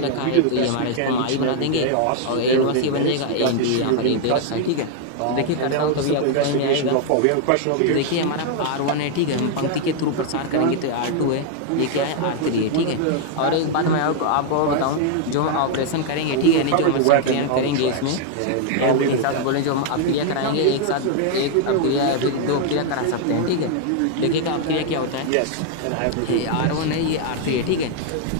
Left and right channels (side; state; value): both; different; correlation 0.00